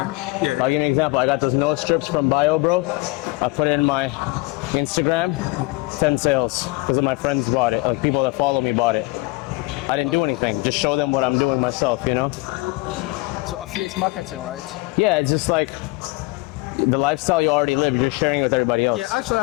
I'll give you an example. I got those nose strips from Bio Bro. I put it in my Instagram, 10 sales because of my friends bought it, people that follow me bought it. I didn't do anything, just show them what I'm doing myself, So affiliate marketing, right? Yeah, it's just like the lifestyle you already live, you're sharing it with everybody else. Yeah, actually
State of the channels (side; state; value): right; quieter; 23.9 dB